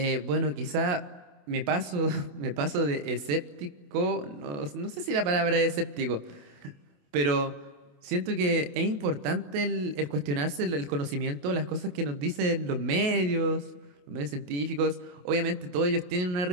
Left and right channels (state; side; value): late; left; 28 ms